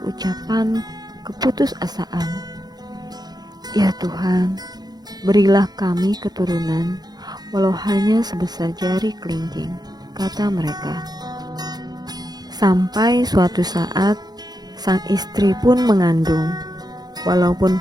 ucapan keputusasaan. Ya Tuhan, berilah kami keturunan, walau hanya sebesar jari kelingking, kata mereka. Sampai suatu saat, sang istri pun mengandung. Walaupun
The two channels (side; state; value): left; late; 0.19 ms